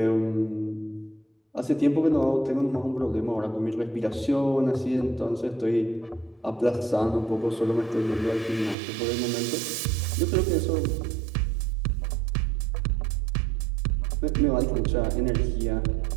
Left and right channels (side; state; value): left; drops out; at 8.8 s